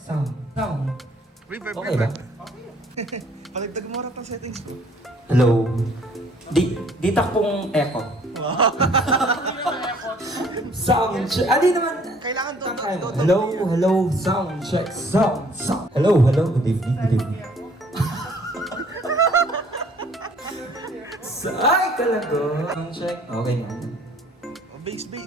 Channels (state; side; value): normal; both; correlation 0.58